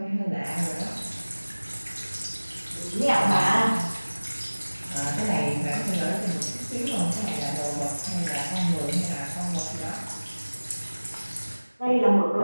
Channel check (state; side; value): inverted; both; correlation -1.00